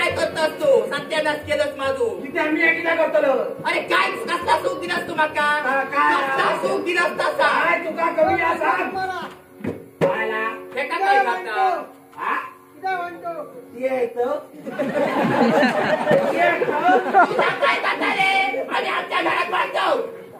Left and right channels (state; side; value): identical; both; correlation 1.00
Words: करतोस तू? सत्यानाश केलंस माझू. तिथे आम्ही एकदा करतलो. अरे काय कसला सुख दिलास तू माका? कसला सुख दिलास तसा? काय तुका कमी असा हे का काय करता? काय करता रे? आणि आमच्या घरात बांधव